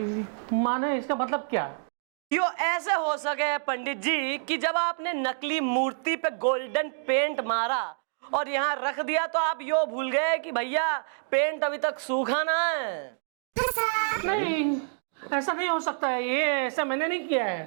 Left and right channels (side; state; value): left; silent; digital silence